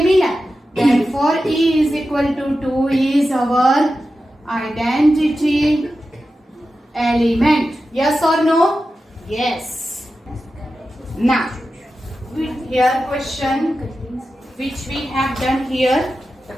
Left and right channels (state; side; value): normal; both; correlation 0.92